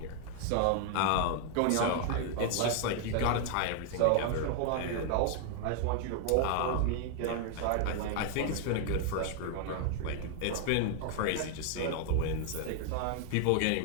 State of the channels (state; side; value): different; both; correlation 0.00